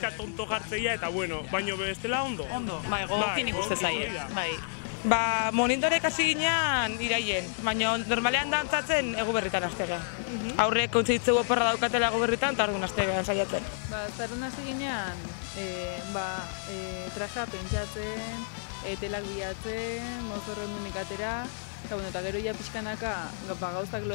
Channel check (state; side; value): silent; right; digital silence